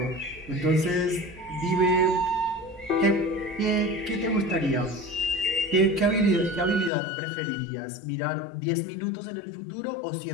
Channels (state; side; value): drops out; right; at 6.9 s